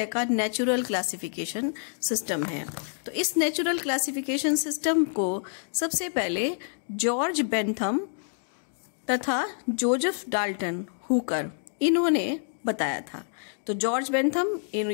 का नेचुरल क्लासिफिकेशन सिस्टम है। तो इस नेचुरल क्लासिफिकेशन सिस्टम को सबसे पहले जॉर्ज बेंथम तथा जोसेफ डाल्टन हुकर इन्होंने बताया था। तो जॉर्ज बेंथम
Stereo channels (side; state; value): right; silent; digital silence